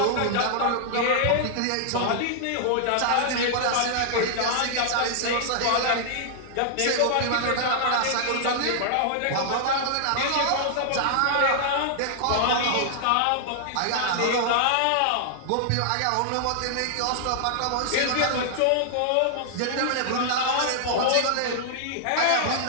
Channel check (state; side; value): different; both; correlation -0.01